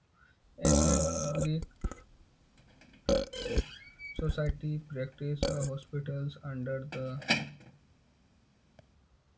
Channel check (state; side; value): identical; both; correlation 1.00